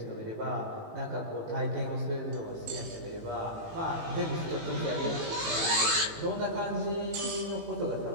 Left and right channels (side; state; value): left; late; 18 ms